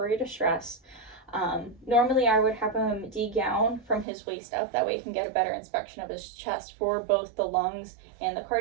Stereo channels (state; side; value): drops out; left; at 4.0 s